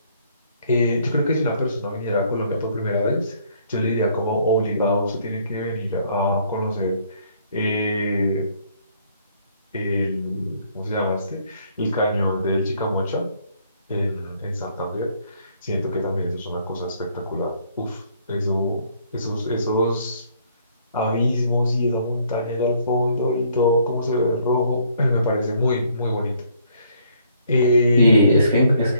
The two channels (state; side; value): inverted; both; correlation -0.65